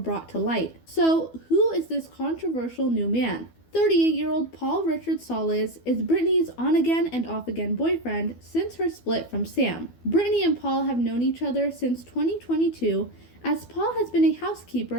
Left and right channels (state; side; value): late; right; 12 ms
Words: to light. So, who is this controversial new man? 38-year-old Paul Richard Solis is Britney's on-again and off-again boyfriend since her split from Sam. Britney and Paul have known each other since 2022, as Paul has been a